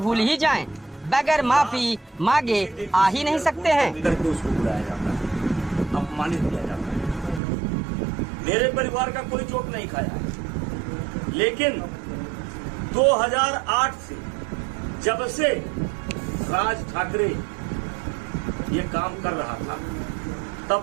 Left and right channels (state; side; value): drops out; left; at 7.4 s